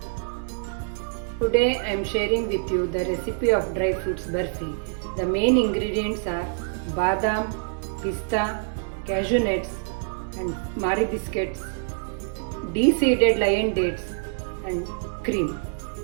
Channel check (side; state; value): left; silent; digital silence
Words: Today I am sharing with you the recipe of dry fruits barfi. The main ingredients are badam, pista, cashew nuts and Marie biscuits, de-seeded lion dates and cream.